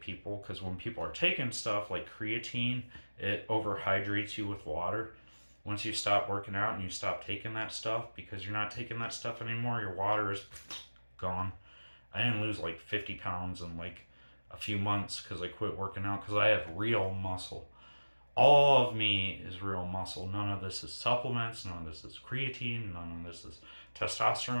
people, because when people are taking stuff like creatine, it overhydrates you with water. Once you stop working out and you stop taking that stuff, because you're not taking that stuff anymore, your water is gone. I didn't lose like 50 pounds in like a few months because I quit working out, because I have real muscle. All of me is real muscle. None of this is supplements. None of this is creatine. None of this is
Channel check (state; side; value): inverted; both; correlation -1.00